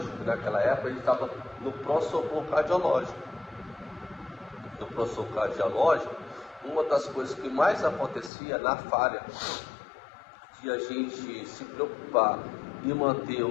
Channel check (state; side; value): drops out; right; at 8.3 s